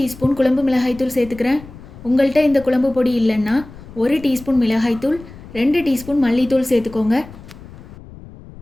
குழம்பு மிளகாய்த்தூள் சேர்த்துக்கிறேன். உங்கள்கிட்ட இந்த குழம்பு பொடி இல்லைன்னா 1 டீஸ்பூன் மிளகாய்த்தூள், 2 டீஸ்பூன் மல்லித்தூள் சேர்த்துக்கோங்க.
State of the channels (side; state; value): left; noise; rumble, 18 dB below the sound